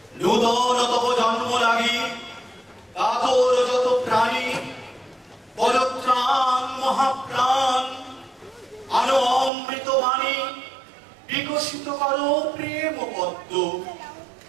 নূতন তব জন্ম লাগি, কাতর যত প্রাণী, পরত্রাণ মহাপ্রাণ, আনো অমৃত বাণী, বিকশিত করো প্রেম পদ্ম,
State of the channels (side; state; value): left; drops out; at 9.5 s